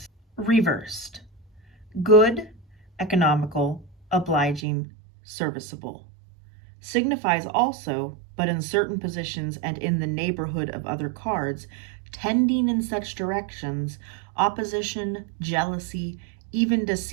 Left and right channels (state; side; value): drops out; left; at 4.6 s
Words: Reversed. Good, economical, obliging, serviceable. Signifies also, but in certain positions and in the neighborhood of other cards, tending in such directions, opposition, jealousy, even